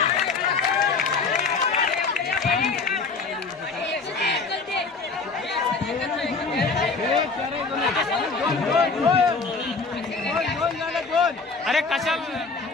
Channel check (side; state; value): right; quieter; 4.4 dB